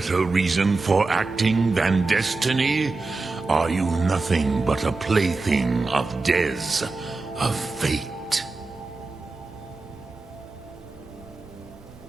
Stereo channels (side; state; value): left; quieter; 3.6 dB